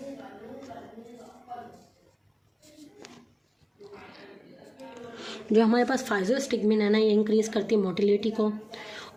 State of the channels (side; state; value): both; identical; correlation 1.00